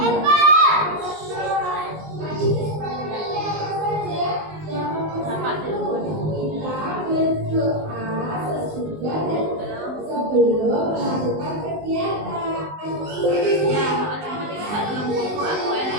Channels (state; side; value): late; left; 19 ms